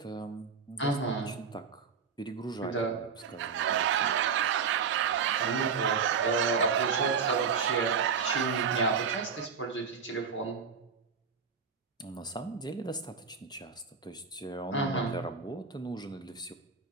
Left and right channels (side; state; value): left; quieter; 5.8 dB